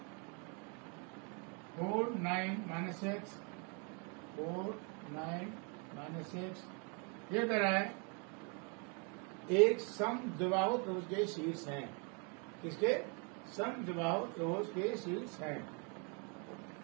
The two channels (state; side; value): quieter; left; 35.6 dB